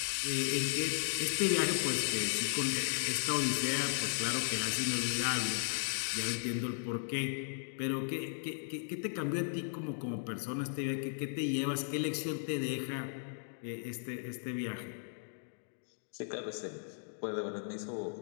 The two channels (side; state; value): right; silent; digital silence